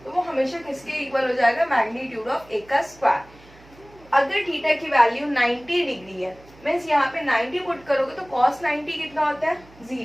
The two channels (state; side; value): noise; right; hum, 25 dB below the sound